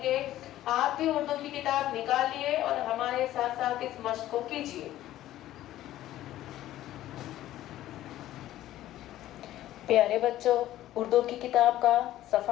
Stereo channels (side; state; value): right; quieter; 13.9 dB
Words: گے۔ آپ بھی اردو کی کتاب نکالیے اور ہمارے ساتھ ساتھ اس مشق کو کیجیے۔ پیارے بچوں، اردو کی کتاب کا